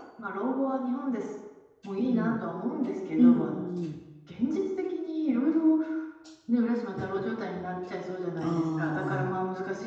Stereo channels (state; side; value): identical; both; correlation 1.00